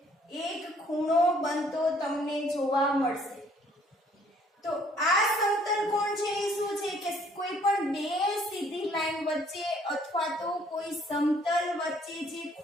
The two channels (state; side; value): normal; both; correlation 0.61